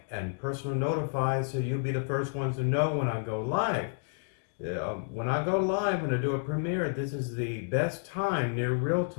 and personal notify so you'll be the first ones to know when I go live. When I go live, when I do a premiere, this is the best time, near real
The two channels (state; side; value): silent; right; digital silence